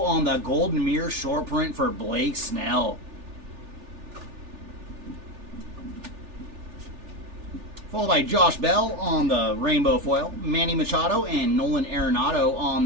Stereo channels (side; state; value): left; late; 3.4 ms